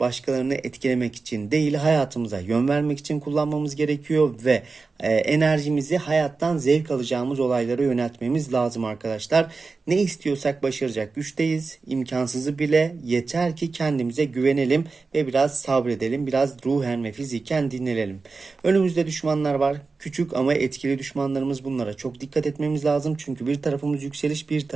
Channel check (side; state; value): left; quieter; 4.2 dB